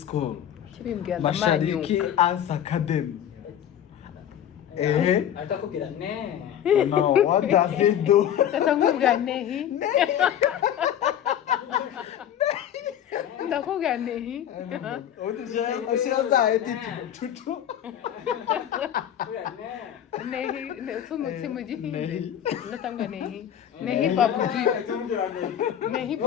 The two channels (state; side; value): quieter; right; 10.1 dB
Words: school Mashariki Arts Academy atakubwira ne no what does it do atakubwira nehi ndakubwira nehi Ashira za edit tutu nehi sumutse mu gihindi ndatanga nehi nehi babuji nehi